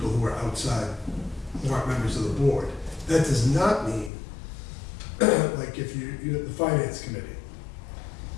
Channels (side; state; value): right; drops out; at 4.1 s